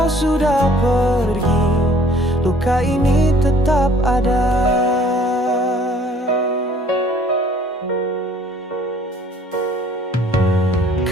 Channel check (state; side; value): normal; both; correlation 0.56